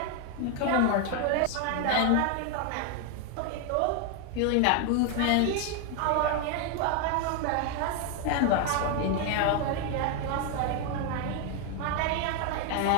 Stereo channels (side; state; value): both; different; correlation 0.01